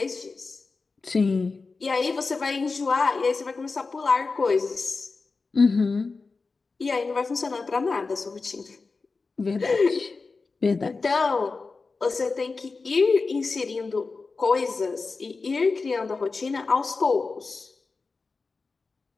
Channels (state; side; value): quieter; right; 4.2 dB